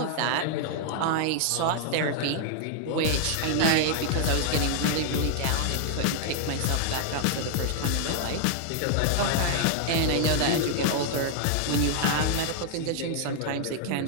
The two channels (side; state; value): both; different; correlation 0.00